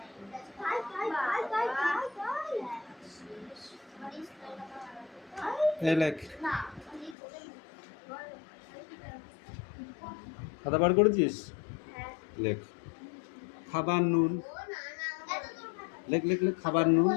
এই লেখ, খাতা বার করেছিস? লেখ খাবার নুন। লেখ লেখ লেখ, খাবার নুন।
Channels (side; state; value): right; drops out; at 7.2 s